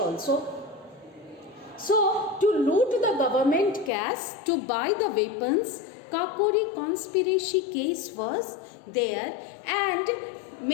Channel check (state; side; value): drops out; right; at 3.9 s